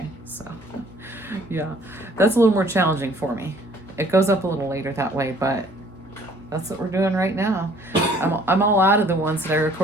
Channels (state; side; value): normal; both; correlation 0.58